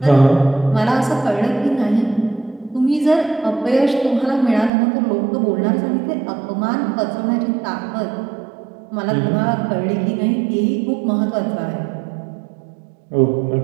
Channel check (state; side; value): drops out; left; at 4.7 s